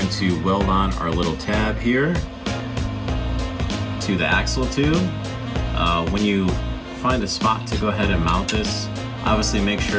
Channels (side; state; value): both; identical; correlation 1.00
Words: to weld on our little tab here. to the axle tube. When you find a spot to go ahead and mount this, obviously make